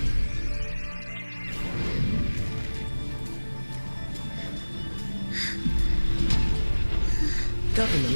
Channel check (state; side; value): inverted; both; correlation -1.00